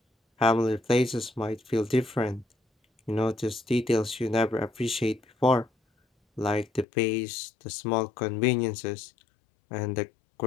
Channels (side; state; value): right; drops out; at 6.9 s